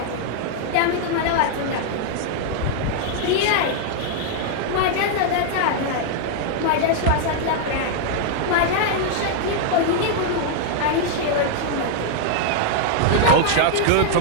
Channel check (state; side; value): different; both; correlation 0.00